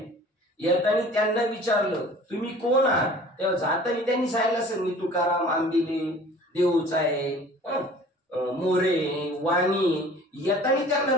येताना त्यांना विचारलं तुम्ही कोण आहात, तेव्हा जाताना त्यांनी सांगितलं असेल मी तुकाराम आंबिले देऊचा आहे, मोरे वाणी. येताना त्यांना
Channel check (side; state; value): both; normal; correlation 0.47